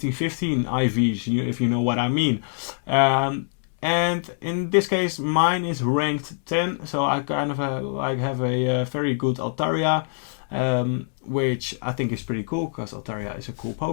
15 IVs, if you know what I mean. And in this case, mine is ranked 10. So I kind of have a very good Altaria. Which I think is pretty cool, because Altaria is a cool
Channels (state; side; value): silent; right; digital silence